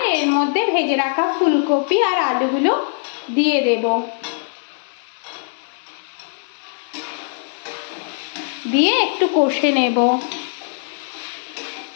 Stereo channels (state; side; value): silent; right; 64 dB below the other